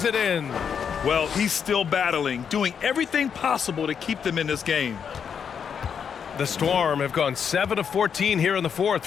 it in. Well, he's still battling, doing everything possible to keep them in this game. The Storm have gone 7 of 14 here in the fourth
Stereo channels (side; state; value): right; quieter; 7.2 dB